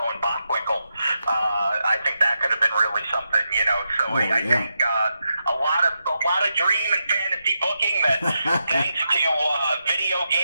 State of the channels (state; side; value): inverted; both; correlation -0.86